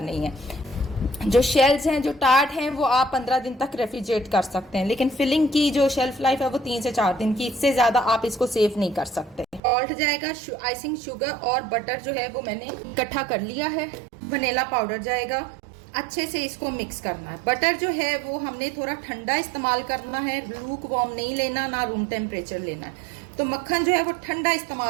नहीं है। जो शेल्स हैं, जो टार्ट हैं, वो आप 15 दिन तक रेफ्रिजरेट कर सकते हैं, लेकिन फिलिंग की जो शेल्फ लाइफ है वो 3 से 4 दिन की, इससे ज़्यादा आप इसको सेव नहीं कर सकते। सॉल्ट जाएगा, आइसिंग शुगर और बटर जो है वो मैंने इकट्ठा कर लिया है। वनीला पाउडर जाएगा। अच्छे से इसको मिक्स करना है। बटर जो है वो हमने थोड़ा ठंडा इस्तेमाल करना है, लूक वार्म नहीं लेना, ना रूम टेम्परेचर लेना है। तो मक्खन जो है वो ठंडा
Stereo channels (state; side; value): drops out; left; at 9.6 s